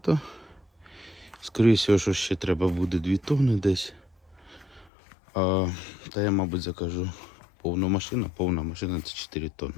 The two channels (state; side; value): drops out; right; at 4.9 s